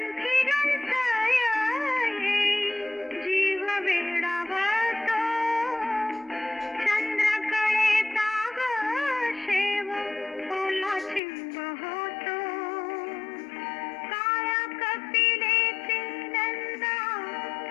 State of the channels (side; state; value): right; drops out; at 11.2 s